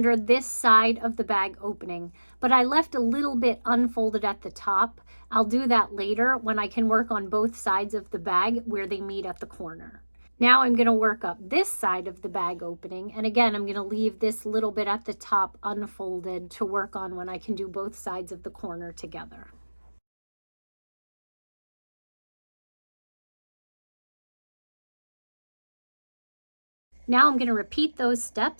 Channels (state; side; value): inverted; both; correlation -1.00